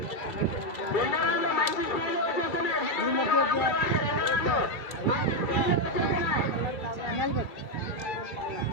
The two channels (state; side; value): late; right; 2.3 ms